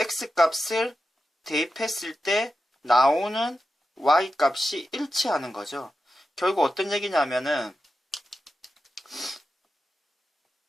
대입했을 때 나오는 y값이 일치하는 거죠. 결국 어떤 얘기냐면은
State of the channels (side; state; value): both; normal; correlation 0.90